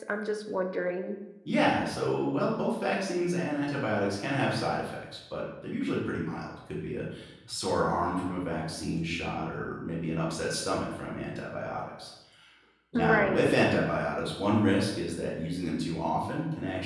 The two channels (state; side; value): identical; both; correlation 1.00